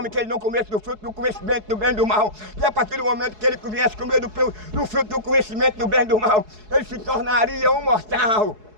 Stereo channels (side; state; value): left; late; 4.7 ms